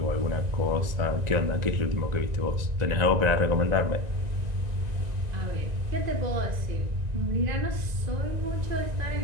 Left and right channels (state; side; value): late; left; 1.9 ms